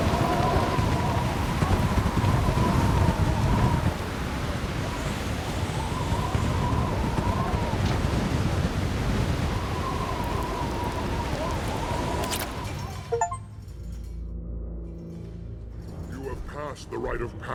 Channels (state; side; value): identical; both; correlation 1.00